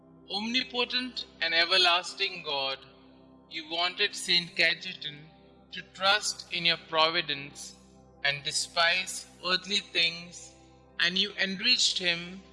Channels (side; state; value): both; identical; correlation 1.00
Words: Omnipotent and everlasting God, you wanted St Cajetan to trust in your providence and despise earthly things, and you enriched him